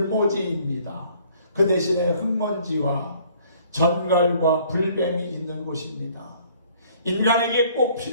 그 대신에 흙먼지와 전갈과 불뱀이 있는 곳입니다. 인간에게 꼭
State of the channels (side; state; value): both; inverted; correlation -0.58